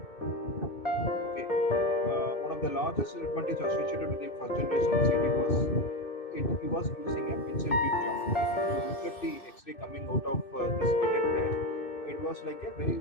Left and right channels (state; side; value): late; right; 2.6 ms